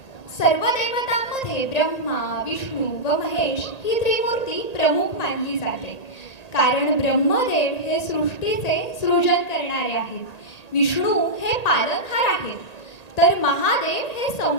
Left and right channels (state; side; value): late; right; 1.8 ms